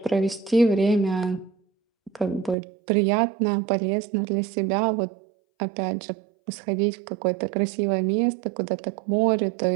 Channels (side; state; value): left; drops out; at 2.6 s